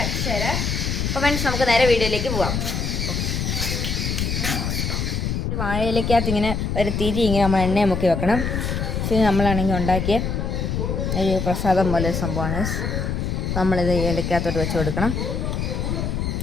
അക്ഷര. അപ്പോൾ ഫ്രണ്ട്സ്, നമുക്ക് നേരെ വീഡിയോയിലേക്ക് പോവാം. വാഴയിലേക്കകത്ത് ഇങ്ങനെ ഒരു തിരി ഇങ്ങനെ നമ്മൾ എണ്ണയെ മുക്കി വെക്കണം. ഇത് നമ്മളാണെങ്കിൽ ഉണ്ടാക്കിയ ഒരു പ്രസാദം പോലെ ഒരു സംഭവമാണ്. നമ്മളിത് ഇലക്കകത്തോട്ട് വെച്ച് കൊടുക്കണം.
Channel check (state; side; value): noise; left; rumble, 1 dB below the sound